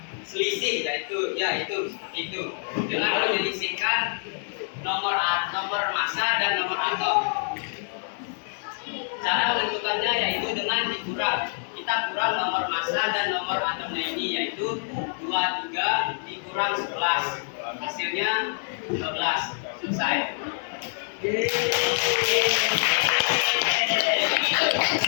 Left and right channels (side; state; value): right; silent; digital silence